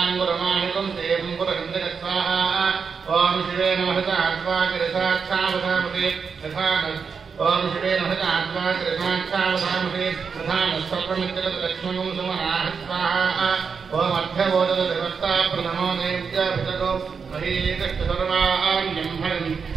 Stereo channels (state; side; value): quieter; left; 5.8 dB